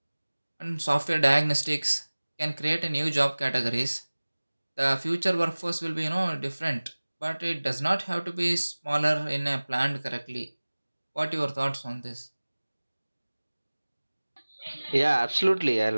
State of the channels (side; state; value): both; inverted; correlation -1.00